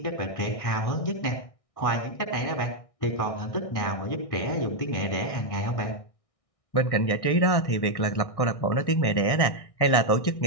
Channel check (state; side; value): late; right; 1.6 ms